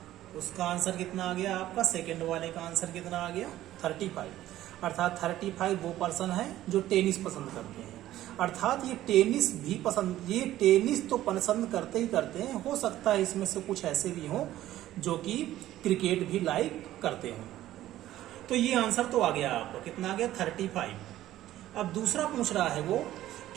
उसका आंसर कितना आ गया आपका, सेकंड वाले का आंसर कितना आ गया 35। अर्थात 35 वो पर्सन है जो टेनिस पसंद करते हैं। अर्थात ये टेनिस तो पसंद करते ही करते हैं, हो सकता है इसमें से कुछ ऐसे भी हों जो कि क्रिकेट भी लाइक करते हों। तो ये आंसर तो आ गया आपको, कितना आ गया 35। अब दूसरा पूछ रहा है वो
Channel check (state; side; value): quieter; left; 14.0 dB